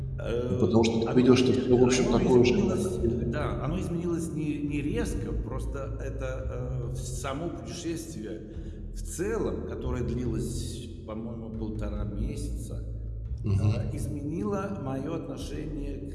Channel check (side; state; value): both; identical; correlation 1.00